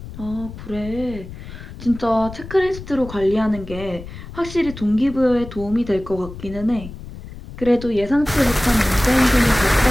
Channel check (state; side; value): noise; left; rumble, 13 dB below the sound